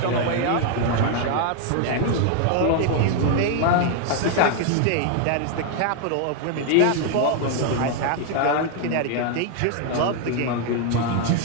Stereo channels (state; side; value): different; both; correlation 0.00